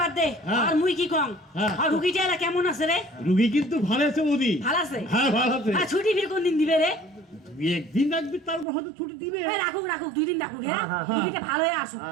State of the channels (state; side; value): drops out; left; at 8.7 s